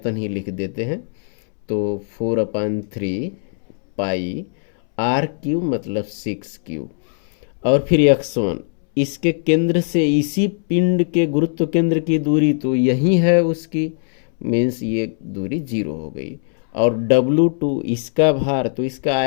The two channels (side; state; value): right; silent; 66 dB below the other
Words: ही लिख देते हैं। तो 4/3 पाई R³ मतलब 6³ और फिर x1 इसके केंद्र से इसी पिंड के गुरुत्व केंद्र की दूरी तो यही है उसकी, मीन्स ये दूरी 0 हो गई। और W2 इसका भार, तो इसका